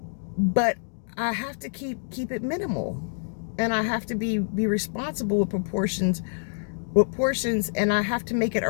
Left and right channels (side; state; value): right; silent; digital silence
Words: But I have to keep it minimal, and I have to be responsible with portions, and I have to make it